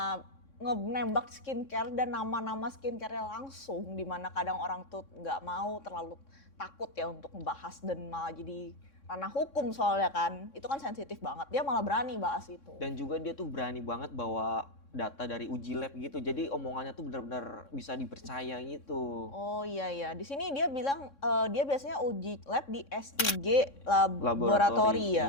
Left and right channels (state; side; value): late; right; 3.6 ms